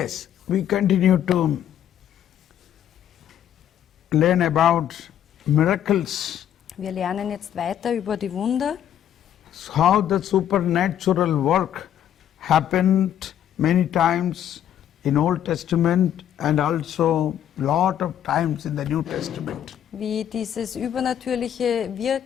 we continue to learn about miracles, Wir lernen jetzt weiter über die Wunder, how the supernatural work happened many times in Old Testament and also lot of times in the New Testament. wie dieses übernatürliche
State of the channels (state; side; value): quieter; right; 10.3 dB